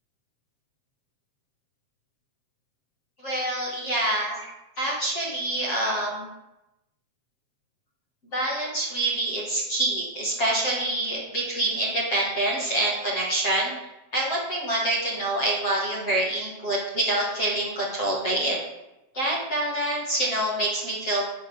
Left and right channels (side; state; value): right; late; 7.4 ms